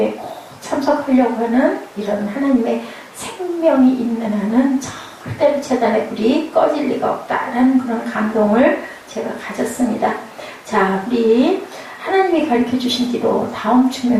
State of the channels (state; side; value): identical; both; correlation 1.00